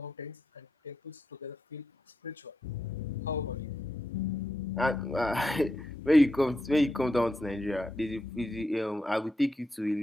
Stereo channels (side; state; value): both; normal; correlation 0.84